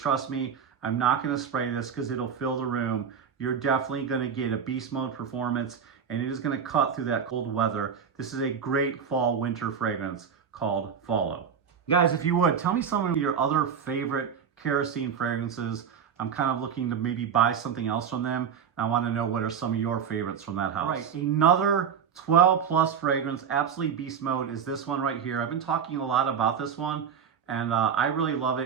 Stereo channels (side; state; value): left; quieter; 7.3 dB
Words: me, I'm not going to spray this because it'll fill the room. You're definitely going to get a beast mode performance, and it is going to cut through that cold weather. This is a great fall winter fragrance called Follow. Guys, if you would, tell me some of your other favorite Kerosene fragrances. I'm kind of looking to maybe buy something else from them. I want to know what are some of your favorites from that house. Right, another 12 plus fragrance, absolutely beast mode, is this one right here. I've been talking a lot about this one, and I really love